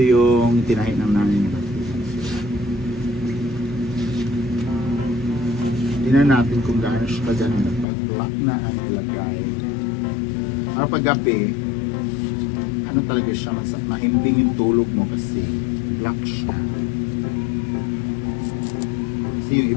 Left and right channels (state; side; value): drops out; right; at 7.9 s